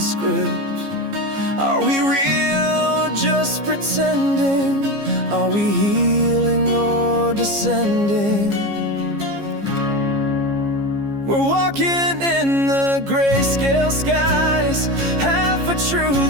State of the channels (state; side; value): late; left; 15 ms